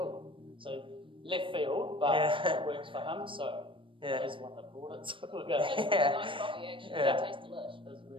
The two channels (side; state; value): left; late; 0.25 ms